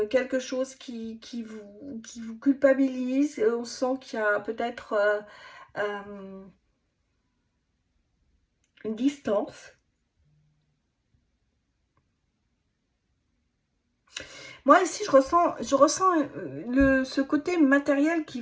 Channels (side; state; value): both; identical; correlation 1.00